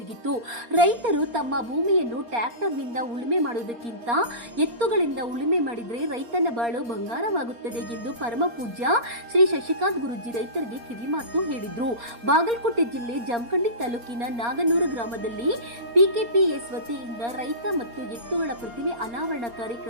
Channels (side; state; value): left; late; 4.3 ms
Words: ರೈತರು ತಮ್ಮ ಭೂಮಿಯನ್ನು ಟ್ರ್ಯಾಕ್ಟರ್ನಿಂದ ಉಳುಮೆ ಮಾಡುವುದಕ್ಕಿಂತ ಎತ್ತುಗಳಿಂದ ಉಳುಮೆ ಮಾಡಿದರೆ ರೈತನ ಬಾಳು ಬಂಗಾರವಾಗುತ್ತದೆ ಎಂದು ಪರಮ ಪೂಜ್ಯ ಶ್ರೀ ಶಶಿಕಾಂತ್ ಗುರೂಜಿ ರೈತರಿಗೆ ಕಿವಿಮಾತು ಹೇಳಿದರು. ಬಾಗಲಕೋಟೆ ಜಿಲ್ಲೆ ಜಮಖಂಡಿ ತಾಲೂಕಿನ ನಾಗನೂರು ಗ್ರಾಮದಲ್ಲಿ ಪಿಕೆಪಿಎಸ್ ವತಿಯಿಂದ ರೈತ ಮತ್ತು ಎತ್ತುಗಳ ಪ್ರತಿಮೆ ಅನಾವರಣ